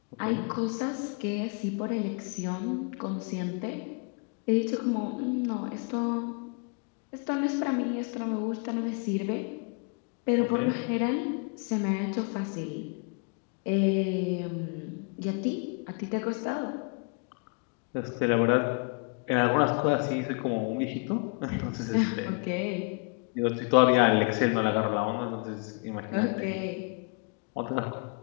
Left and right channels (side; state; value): right; quieter; 36.3 dB